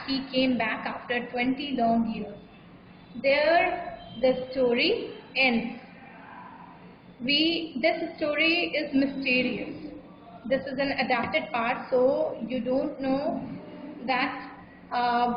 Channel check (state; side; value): identical; both; correlation 1.00